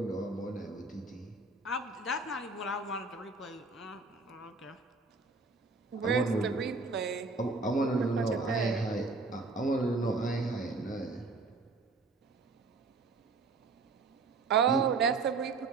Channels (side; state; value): left; quieter; 3.8 dB